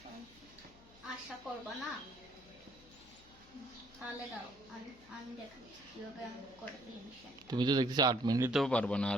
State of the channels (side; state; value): left; noise; hum, 25 dB below the sound